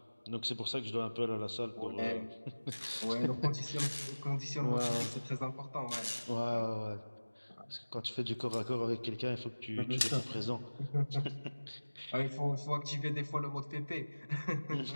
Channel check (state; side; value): inverted; both; correlation -1.00